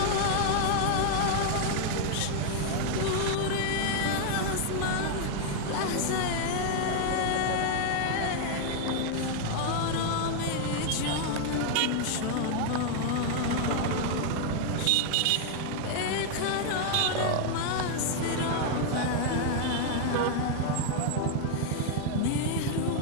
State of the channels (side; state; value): both; different; correlation 0.00